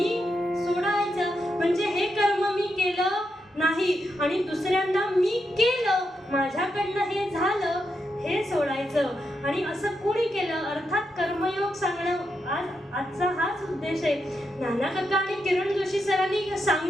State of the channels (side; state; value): both; normal; correlation 0.84